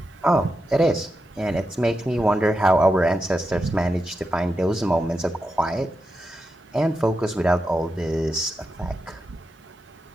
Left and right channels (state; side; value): normal; both; correlation 0.87